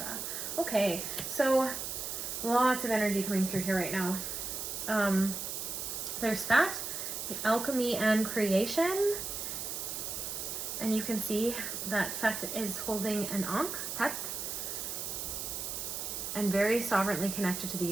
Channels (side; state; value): right; noise; hiss, 4 dB below the sound